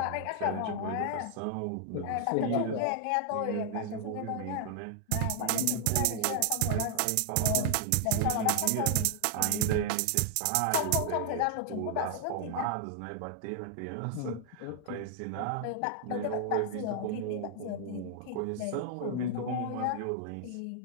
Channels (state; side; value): different; both; correlation 0.00